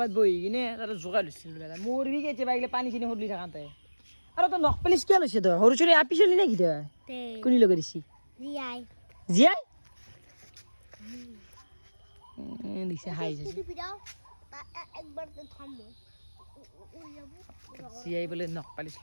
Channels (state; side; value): inverted; both; correlation -1.00